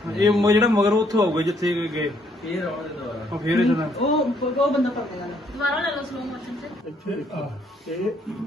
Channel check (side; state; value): both; normal; correlation 0.68